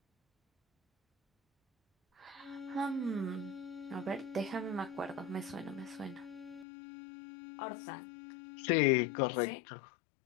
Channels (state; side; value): drops out; right; at 6.7 s